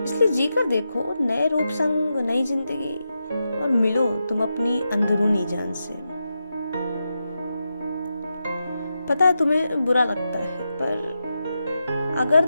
इसलिए जीकर देखो नए रूप संग नई जिंदगी और मिलो तुम अपनी अंदरूनी जान से। पता है तुम्हें बुरा लगता है, पर अगर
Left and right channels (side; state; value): both; inverted; correlation -0.88